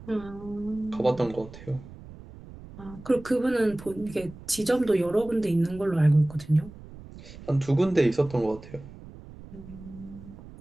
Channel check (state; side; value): noise; right; rumble, 17 dB below the sound